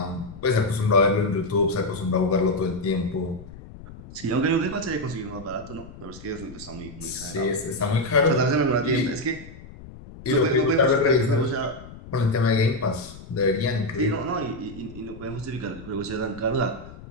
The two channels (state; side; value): noise; left; rumble, 16 dB below the sound